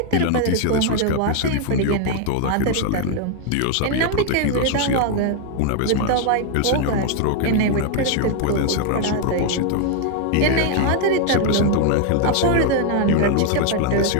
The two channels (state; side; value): different; both; correlation 0.00